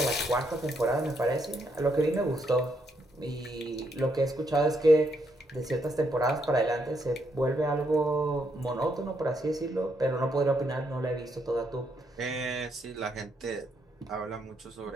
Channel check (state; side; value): normal; both; correlation 0.76